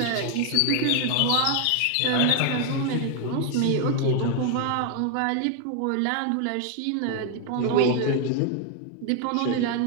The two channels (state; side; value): different; both; correlation 0.00